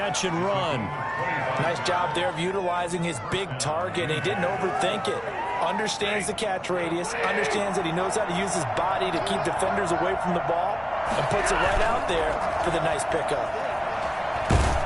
and run. Nice job there of utilizing his big target. He didn't overthink it. Understands the catch radius, understands that he knows how to use his body to keep defenders away from the ball, and puts it right out there for the nice pickup.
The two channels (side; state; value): both; identical; correlation 1.00